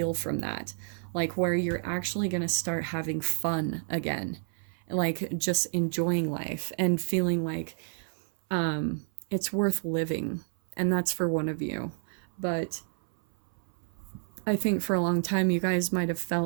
from that. Like where you're actually going to start having fun again, like just enjoying life and feeling like it's worth living. And that's for one of you. But I think for a long time, you guys might have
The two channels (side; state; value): left; silent; 58 dB below the other